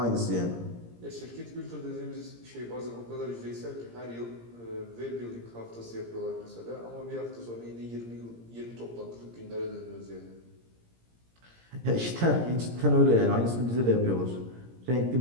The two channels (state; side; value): late; left; 17 ms